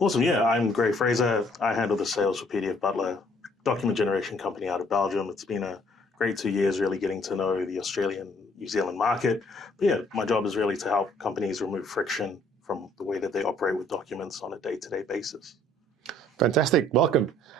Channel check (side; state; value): both; normal; correlation 0.62